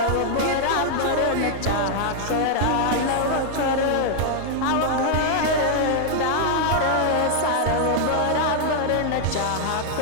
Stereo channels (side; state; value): both; different; correlation 0.00